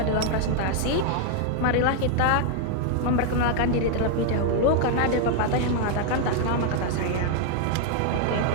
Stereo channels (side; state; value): both; different; correlation 0.00